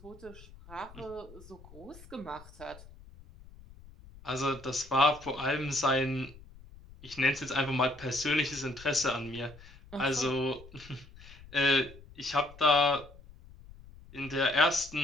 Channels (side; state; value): left; noise; rumble, 20 dB below the sound